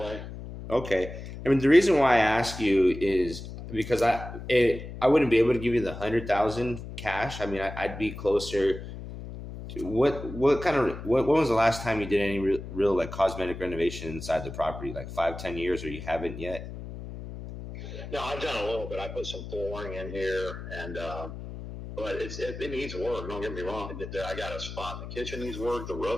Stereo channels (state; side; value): noise; left; hum, 10 dB below the sound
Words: Okay. I mean, the reason why I ask you is because I wouldn't be able to give you the 100,000 cash. I mean, I'd be closer. What kind of when was the last time you did any real like cosmetic renovation inside the property? Like 5-10 years, or you haven't yet? No, I've done a little bit. I put some flooring in here, and but it needs work. Don't get me wrong. I got a spot in the kitchen needs work. The